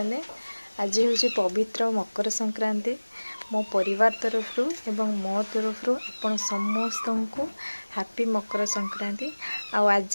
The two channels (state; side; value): inverted; both; correlation -1.00